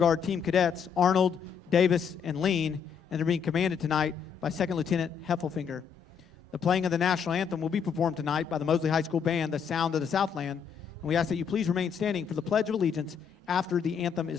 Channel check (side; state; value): right; quieter; 7.0 dB